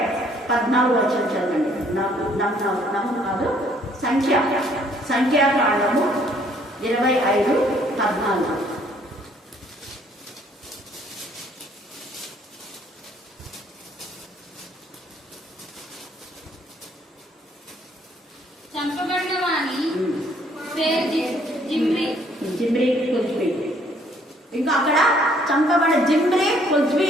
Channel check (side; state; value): both; normal; correlation 0.63